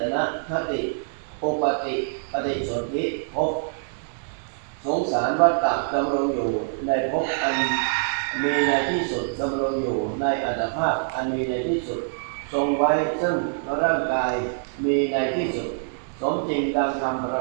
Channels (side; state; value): left; silent; digital silence